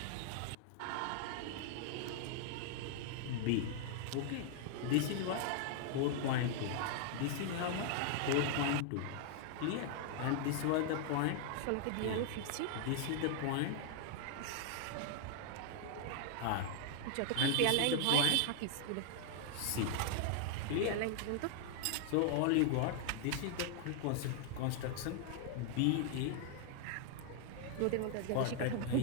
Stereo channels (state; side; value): different; both; correlation 0.00